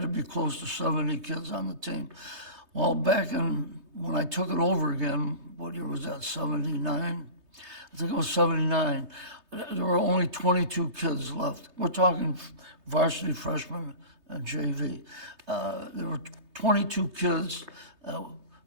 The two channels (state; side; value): late; left; 3.3 ms